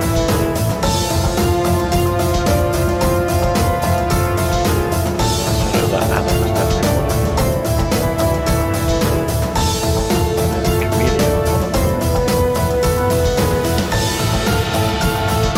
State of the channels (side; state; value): both; identical; correlation 1.00